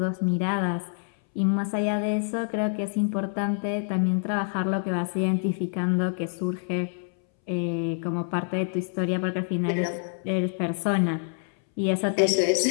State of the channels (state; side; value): silent; right; 61 dB below the other